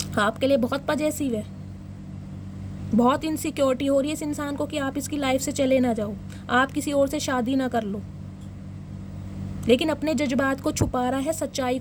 आपके लिए बहुत पॉजेसिव है, बहुत इनसिक्योरिटी हो रही है इस इंसान को कि आप इसकी लाइफ से चले ना जाओ, आप किसी और से शादी ना कर लो, लेकिन अपने जज्बात को छुपा रहा है, सच्चाई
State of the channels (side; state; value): both; identical; correlation 1.00